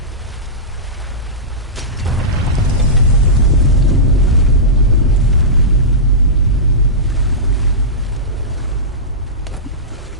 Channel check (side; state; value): both; normal; correlation -0.15